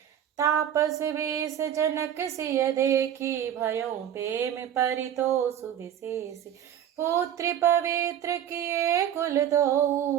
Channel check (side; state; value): left; quieter; 10.1 dB